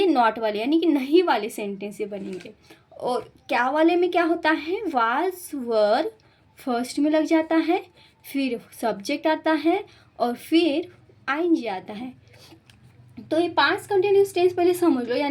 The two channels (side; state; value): both; identical; correlation 1.00